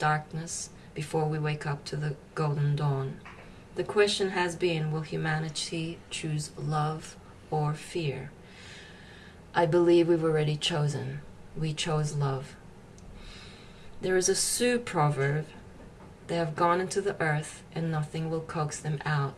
before we wake up to the golden dawn. The question has been, will humanity choose love or fear? I believe we've already chosen. We chose love. There is a Sioux proverb, they have gone into the earth and nothing will coax them out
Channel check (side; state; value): both; identical; correlation 1.00